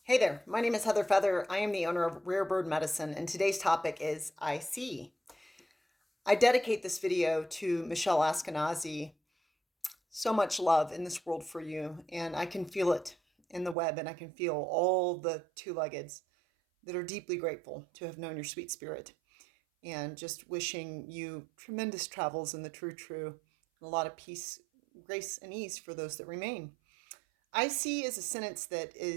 Hey there, my name is Heather Feather. I am the owner of Rare Bird Medicine, and today's topic is I see. I dedicate this video to Michelle Askenazi. So much love in this world for you, and I can feel it in the web, and I can feel all the two-leggeds that are deeply grateful to have known your sweet spirit, and just wishing you tremendous travels in the true, and a lot of peace, grace, and ease for those that remain. I see is a sentence that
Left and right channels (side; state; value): left; drops out; at 13.8 s